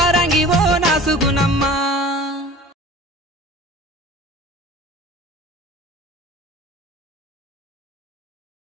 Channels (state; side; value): normal; both; correlation 0.41